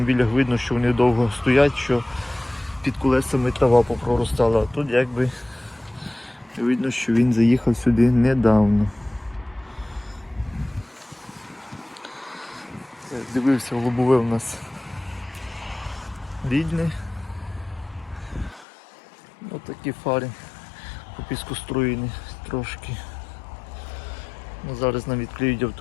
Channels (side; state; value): right; drops out; at 18.7 s